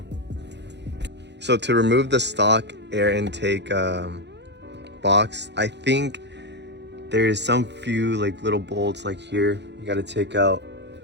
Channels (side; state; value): left; late; 0.50 ms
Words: So to remove the stock air intake box, I think there's some few like little bolts like here. You got to take out